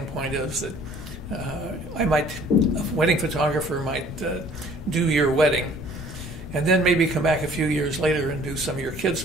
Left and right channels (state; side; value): noise; left; rumble, 12 dB below the sound